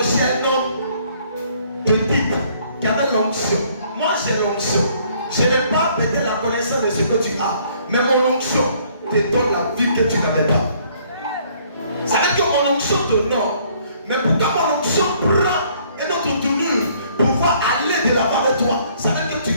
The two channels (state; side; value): inverted; both; correlation -0.62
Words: un homme petit qui avait l'onction. Moi j'ai l'onction. Je n'ai pas peut-être la connaissance de ce que tu as, mais mon onction te donne la vie que tu n'avais pas. Ça veut dire que mon onction t'honore, mais pourquoi mon onction prend une autre tournure pour pouvoir aller de l'avant avec toi? Ça veut dire que tu